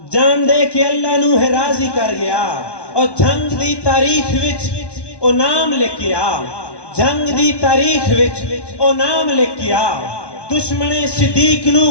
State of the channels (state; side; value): late; right; 1.1 ms